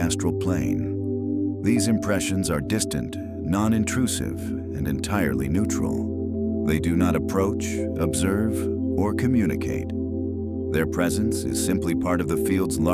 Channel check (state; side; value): identical; both; correlation 1.00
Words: plane. These impressions are distant, non-intrusive, and entirely neutral. They do not approach, observe, or communicate. Their presence is simply part of the field's